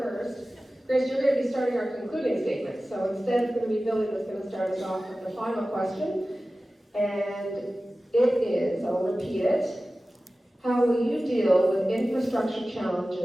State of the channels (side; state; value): both; normal; correlation 0.96